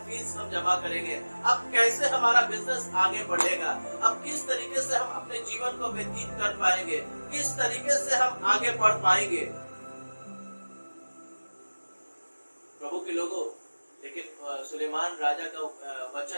फीस हम जमा करेंगे, अब कैसे हमारा बिजनेस आगे बढ़ेगा, अब किस तरीके से हम अपने जीवन को व्यतीत कर पाएंगे, किस तरीके से हम आगे बढ़ पाएंगे। प्रभु के लोगों, लेकिन सुलेमान राजा का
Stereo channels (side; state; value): both; inverted; correlation -1.00